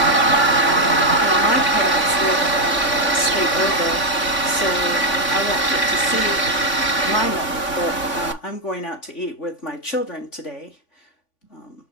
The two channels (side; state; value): right; late; 3.5 ms